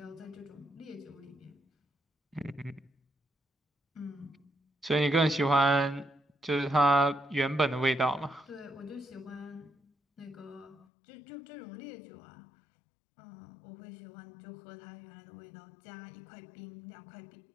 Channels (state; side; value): drops out; right; at 10.9 s